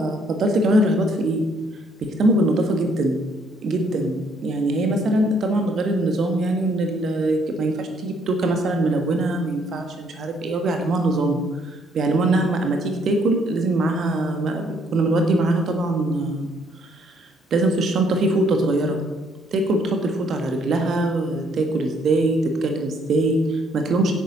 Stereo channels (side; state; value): both; normal; correlation 0.67